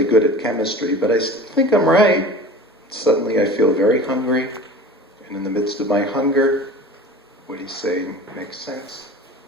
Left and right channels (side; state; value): both; normal; correlation 0.38